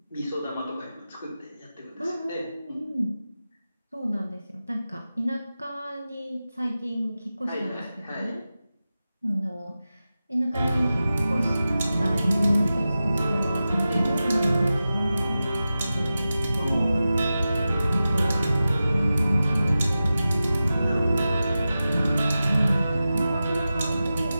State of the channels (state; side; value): inverted; both; correlation -0.93